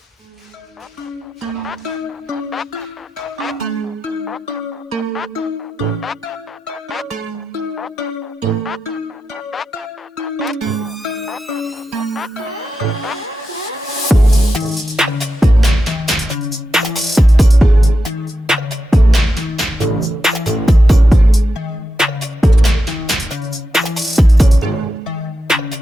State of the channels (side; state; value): both; normal; correlation 0.87